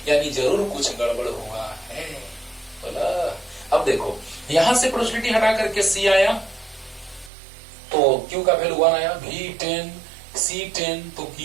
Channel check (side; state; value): left; drops out; at 7.3 s